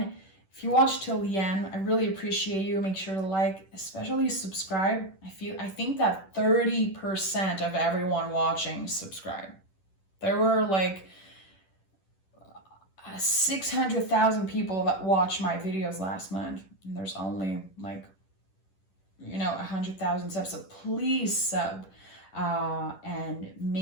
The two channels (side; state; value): right; late; 10 ms